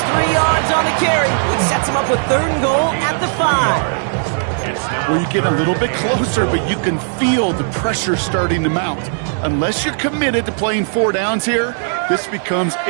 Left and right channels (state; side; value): silent; left; 68 dB below the other